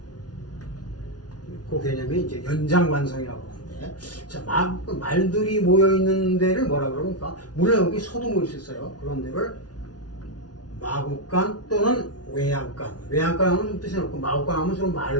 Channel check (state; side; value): late; right; 0.69 ms